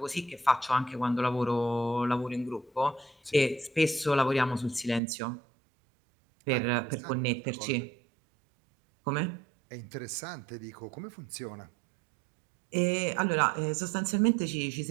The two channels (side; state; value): left; drops out; at 5.0 s